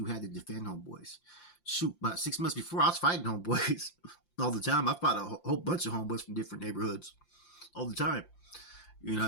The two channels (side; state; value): right; late; 5.8 ms